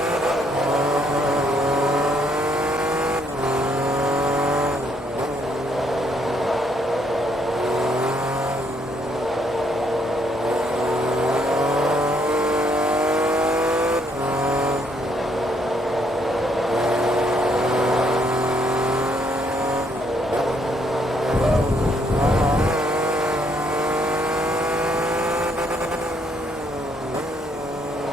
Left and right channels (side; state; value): both; normal; correlation 0.70